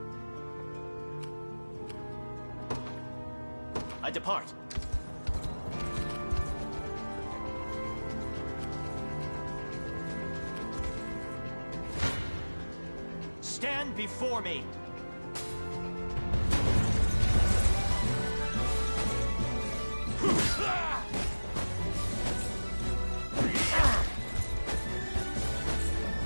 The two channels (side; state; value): both; inverted; correlation -1.00